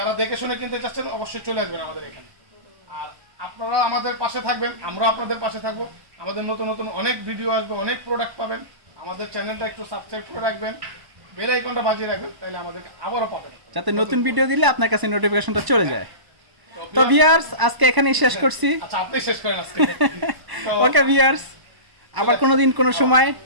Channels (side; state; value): left; late; 1.0 ms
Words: দেখে শুনে কিনতে চাচ্ছেন অবশ্যই চলে আসবেন আমাদের এখানে। আর আপনারা আমাদের পাশে থাকবেন, আমরা আপনাদের পাশে থাকবো। আমাদের নতুন নতুন অনেক ভিডিও আসবে, অনেক প্রোডাক্ট পাবেন। আমাদের চ্যানেলটা একটু সাবস্ক্রাইব করে রাখবেন, বেল আইকনটা বাজিয়ে রাখবেন, তাহলে আমাদেরকে আবারও পাবেন, যাতে নতুন ভিডিও দিলে আপনার কাছে নোটিফিকেশনটা চলে যায়। তো ভিউয়ার্স, আজকে এখানেই শেষ করছি। আচ্ছা আপনি শেষ করেন আজকে। ওকে ভিউয়ার্স, আবার কোনোদিন কোনো সময়